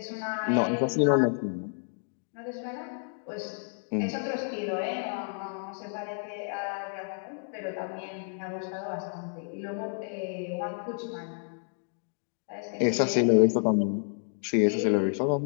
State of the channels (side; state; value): right; silent; 58 dB below the other